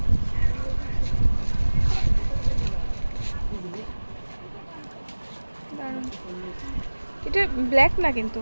দারুণ। এটা ব্ল্যাক না কিন্তু,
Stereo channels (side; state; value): both; inverted; correlation -1.00